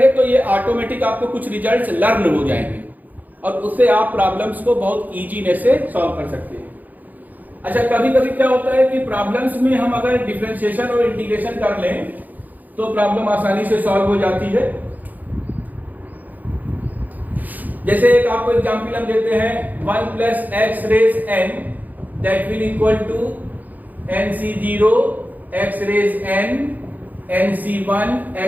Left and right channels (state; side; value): late; left; 0.082 ms